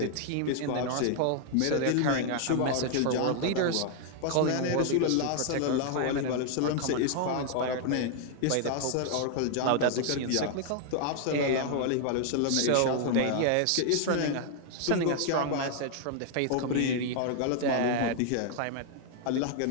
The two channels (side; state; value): both; different; correlation 0.00